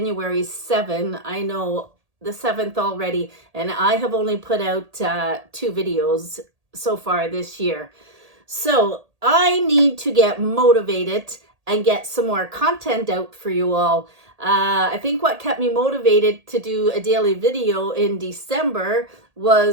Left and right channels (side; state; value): left; late; 1.8 ms